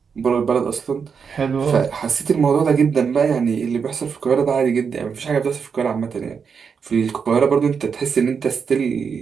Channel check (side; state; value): left; quieter; 6.2 dB